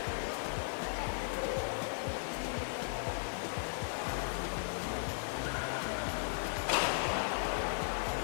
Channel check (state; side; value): silent; right; 53 dB below the other